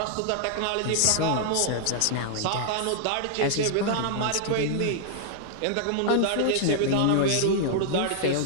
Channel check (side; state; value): both; different; correlation -0.01